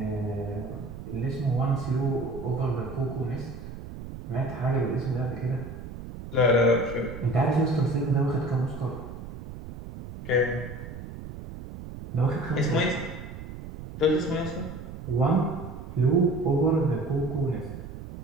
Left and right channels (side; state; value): right; noise; rumble, 11 dB below the sound